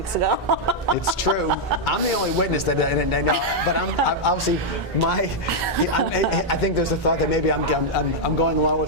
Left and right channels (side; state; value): both; normal; correlation -0.03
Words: ago. It's true. I'm the only witness that I know, but I'm obviously I think there's a thought that maybe I'm going along